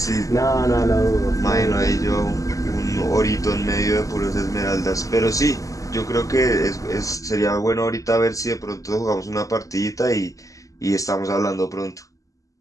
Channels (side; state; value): right; late; 0.16 ms